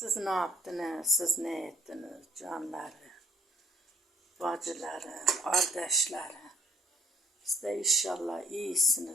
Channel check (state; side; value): normal; both; correlation 0.60